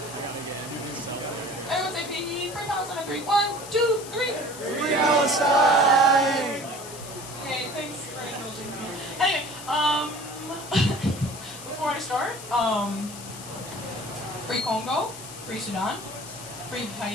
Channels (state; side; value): noise; left; hiss, 13 dB below the sound